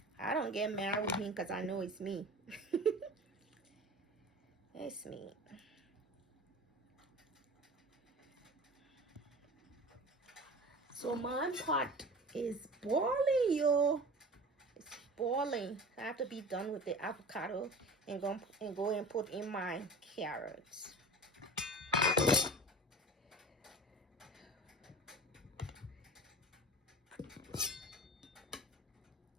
I don't get mad with him because I know it's me. It's me. So my pot is boiling, yo. It's boiling. I have to be done with the avocado and go and put in my carrots.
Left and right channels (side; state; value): both; normal; correlation 0.37